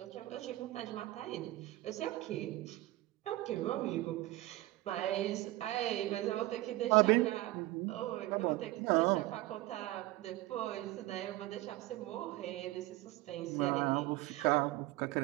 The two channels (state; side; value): quieter; left; 17.8 dB